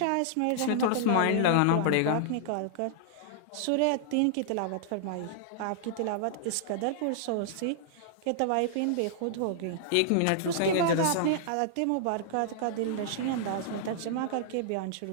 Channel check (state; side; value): different; both; correlation -0.01